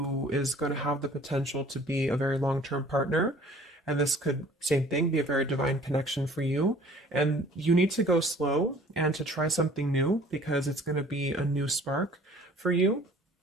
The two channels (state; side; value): normal; both; correlation 0.52